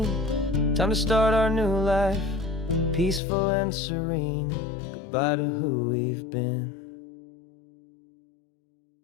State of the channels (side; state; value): right; drops out; at 3.2 s